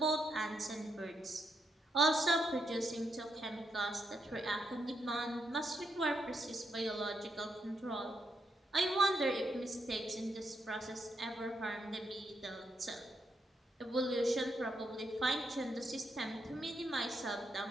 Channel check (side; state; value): both; normal; correlation 0.80